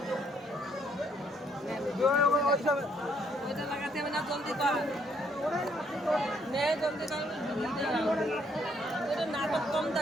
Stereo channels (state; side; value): normal; both; correlation 0.69